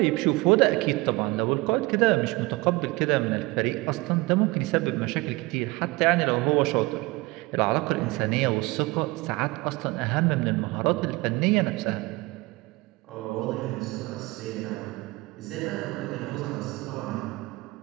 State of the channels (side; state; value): left; quieter; 22.4 dB